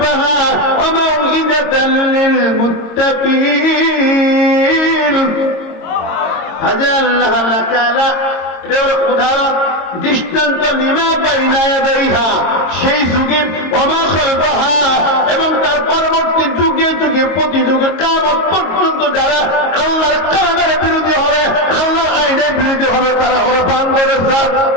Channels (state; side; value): late; right; 22 ms